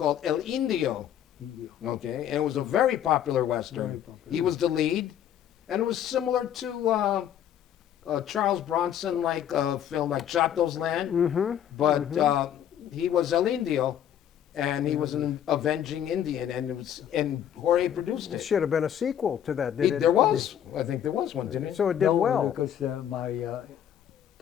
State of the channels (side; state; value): right; quieter; 10.1 dB